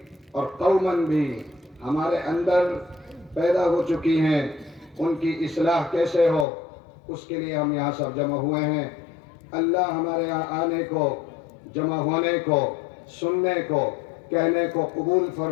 اور قومن بھی ہمارے اندر پیدا ہو چکی ہیں، ان کی اصلاح کیسے ہو، اس کے لیے ہم یہاں سب جمع ہوئے ہیں. اللہ ہمارے یہاں آنے کو، جمع ہونے کو، سننے کو، کہنے کو قبول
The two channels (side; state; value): right; drops out; at 6.5 s